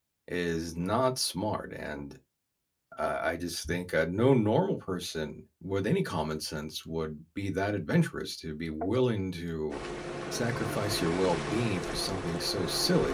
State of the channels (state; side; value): identical; both; correlation 1.00